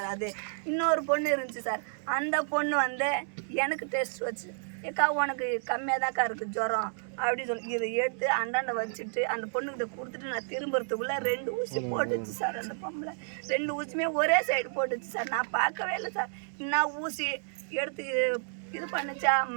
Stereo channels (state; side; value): silent; left; digital silence